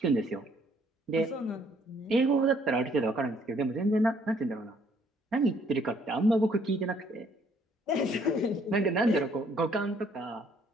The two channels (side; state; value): both; normal; correlation 0.64